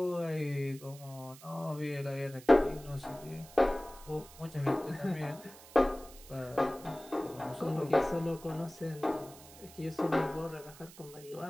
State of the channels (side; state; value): right; noise; hiss, 19 dB below the sound